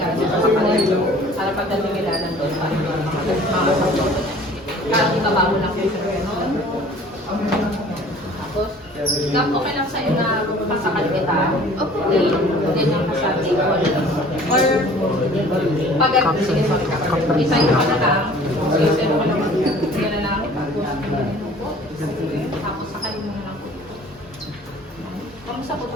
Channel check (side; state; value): both; normal; correlation 0.49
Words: dito sa kanila. Para pagdating nila nandun pa. Parang ibaba mo lang yung gano'n. Tapos, okay lang sa'yo na masakal kita. Okay. Hindi lang ka sa table. Or, pag sige, sorry ka. Isayin ka na lang. Sige mo lang. Sige na lang. Tapos, sakalin mo na lang. Kamusta po